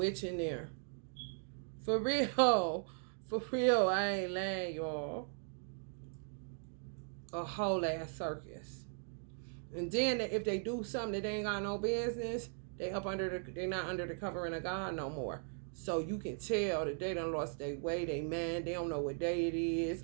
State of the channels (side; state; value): left; silent; 52 dB below the other